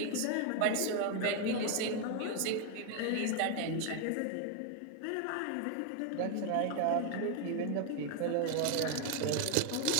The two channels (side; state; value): both; different; correlation 0.01